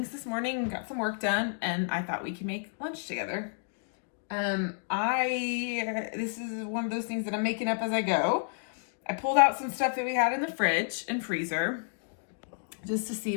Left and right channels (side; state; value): right; silent; digital silence